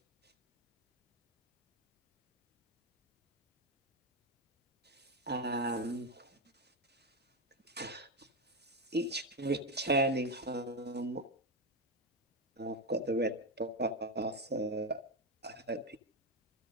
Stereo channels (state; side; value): normal; both; correlation 0.10